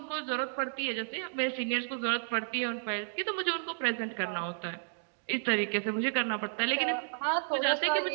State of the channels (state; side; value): silent; left; digital silence